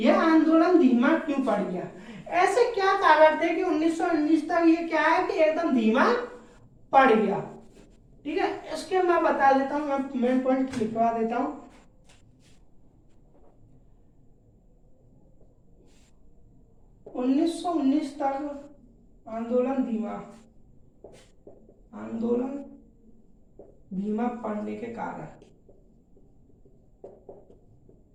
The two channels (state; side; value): identical; both; correlation 1.00